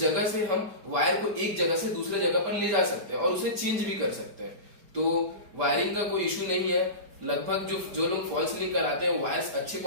से हम वायर को एक जगह से दूसरे जगह पर ले जा सकते हैं और उसे चेंज भी कर सकते हैं। तो वायरिंग का कोई इश्यू नहीं है। लगभग जो लोग फॉल सीलिंग कराते हैं वायर्स अच्छी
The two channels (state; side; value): late; left; 5.0 ms